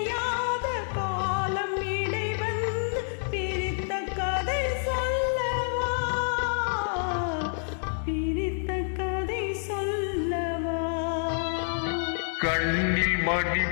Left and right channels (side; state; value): right; silent; digital silence